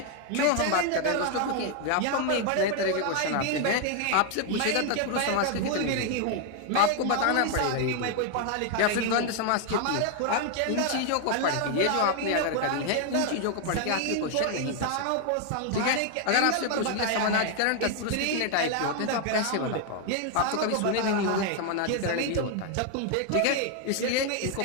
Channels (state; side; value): different; both; correlation 0.00